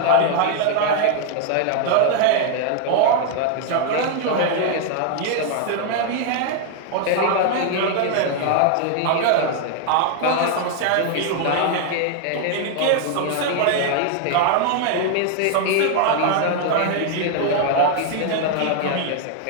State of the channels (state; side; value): different; both; correlation 0.00